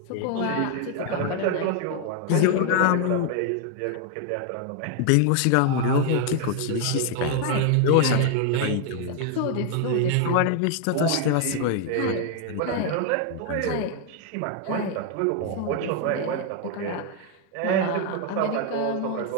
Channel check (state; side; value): different; both; correlation 0.00